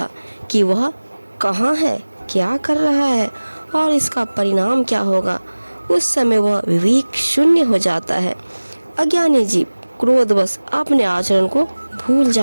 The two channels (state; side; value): inverted; both; correlation -1.00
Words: कि वह कहाँ है, क्या कर रहा है और इसका परिणाम क्या होगा। उस समय वह विवेक शून्य हो जाता है। अज्ञानी जीव क्रोधवश अपने आचरण को भूल